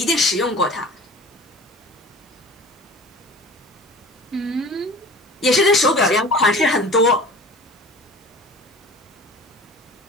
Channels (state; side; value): normal; both; correlation 0.41